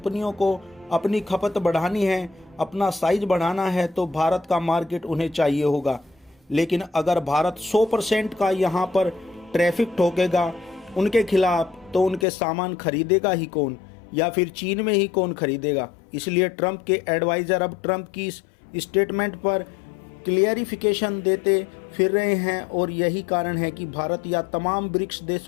को अपनी खपत बढ़ानी है, अपना साइज बढ़ाना है, तो भारत का मार्केट उन्हें चाहिए होगा। लेकिन अगर भारत 100% का यहाँ पर ट्रैफिक ठोकेगा उनके खिलाफ, तो उनके सामान खरीदेगा ही कौन, या फिर चीन में ही कौन खरीदेगा? इसलिए ट्रंप के एडवाइज़र अब ट्रंप की इस स्टेटमेंट पर क्लियरिफिकेशन देते फिर रहे हैं, और यही कारण है कि भारत या तमाम ब्रिक्स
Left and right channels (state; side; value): drops out; right; at 12.2 s